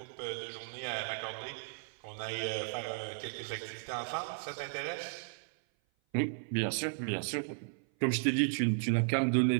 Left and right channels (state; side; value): silent; left; 54 dB below the other